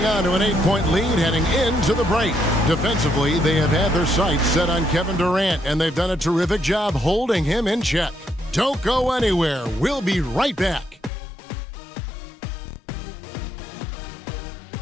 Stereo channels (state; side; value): drops out; right; at 11.1 s